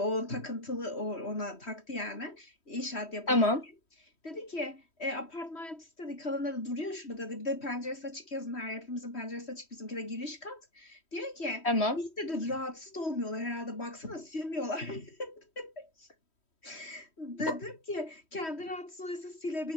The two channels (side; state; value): right; late; 3.1 ms